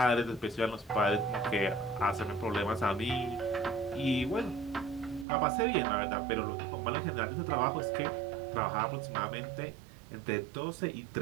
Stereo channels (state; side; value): drops out; left; at 5.2 s